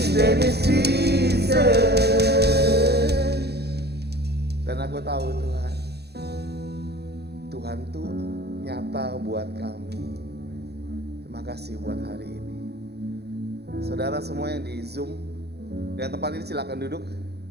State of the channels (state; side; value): late; left; 0.48 ms